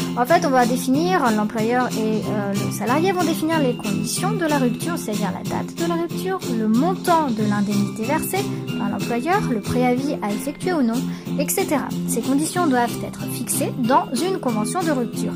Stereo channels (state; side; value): identical; both; correlation 1.00